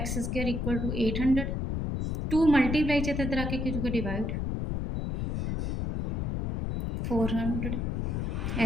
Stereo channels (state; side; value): noise; left; rumble, 1 dB below the sound